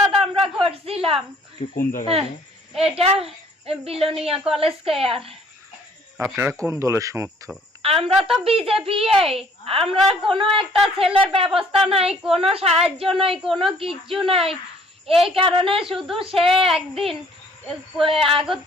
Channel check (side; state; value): both; normal; correlation 0.58